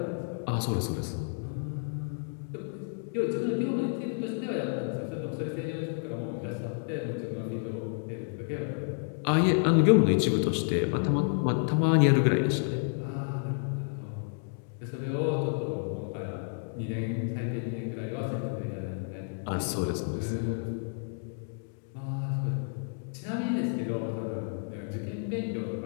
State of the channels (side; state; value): right; silent; digital silence